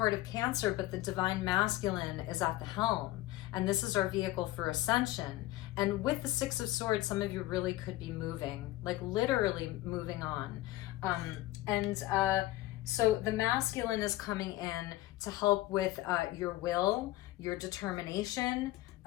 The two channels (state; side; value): quieter; right; 17.0 dB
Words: of Cancer, but the divine masculine is at the helm. And this is our vehicle for ascension. And with the Six of Swords, some of you really could be moving, like literally moving on. So the masculine is coming in to help with your will, your determination,